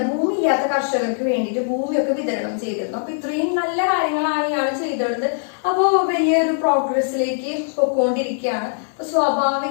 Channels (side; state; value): right; silent; digital silence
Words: ഭൂമി ഇല്ലാത്ത കർഷകർക്ക് വേണ്ടിയിട്ട് ഭൂമിയൊക്കെ വിതരണം ചെയ്തിരുന്നു. അപ്പൊ ഇത്രയും നല്ല കാര്യങ്ങളാണ് ഇയാൾ ചെയ്തിരുന്നത്. അപ്പോ വലിയൊരു പ്രോഗ്രസിലേക്ക് പൊക്കോണ്ടിരിക്കുകയാണ്. അപ്പൊ